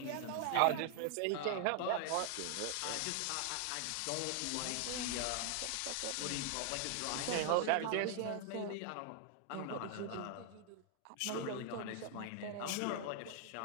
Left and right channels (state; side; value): different; both; correlation 0.00